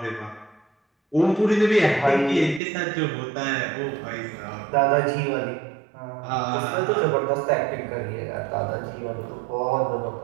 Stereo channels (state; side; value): drops out; left; at 2.6 s